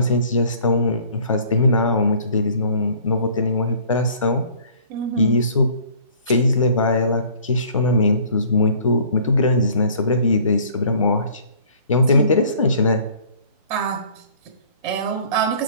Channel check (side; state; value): both; inverted; correlation -0.53